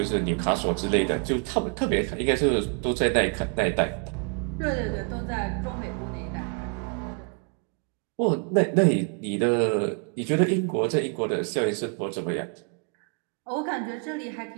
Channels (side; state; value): left; quieter; 38.5 dB